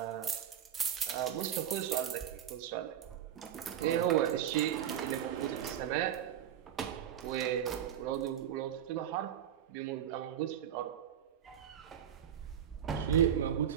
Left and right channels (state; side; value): quieter; left; 9.9 dB